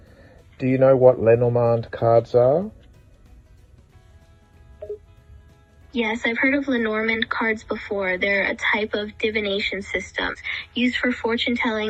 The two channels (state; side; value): identical; both; correlation 1.00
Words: Do you know what Lenormand cards are? Yes, I've heard of Lenormand cards before. They're a type of divination system used for fortune